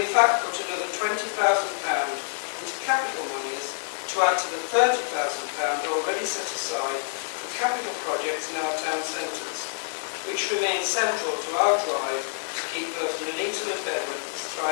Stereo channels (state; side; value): silent; right; 60 dB below the other